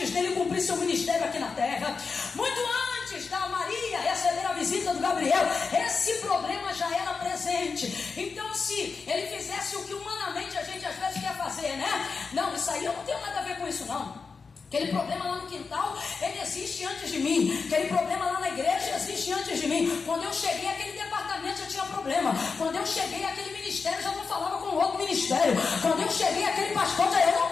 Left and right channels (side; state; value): right; quieter; 4.9 dB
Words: dele cumprir seu ministério aqui na terra, muito antes da Maria receber a visita do Gabriel. Esse problema já era presente. Então, se ele fizesse o que humanamente a gente às vezes quer fazer, né? Não, isso aí eu não tenho nada a ver com isso, não. Aquele problema lá no quintal, ele existe antes de mim. Aquele problema lá na igreja existe antes de mim. Quando eu cheguei, aquele departamento já tinha problema. Quando eu cheguei, aquele ministério já não falava com o outro ministério. Quando eu cheguei, aquele pastor já... Eu não